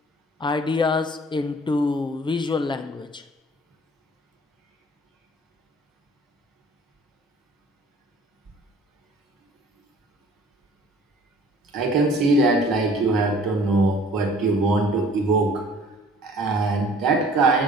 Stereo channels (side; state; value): both; normal; correlation 0.52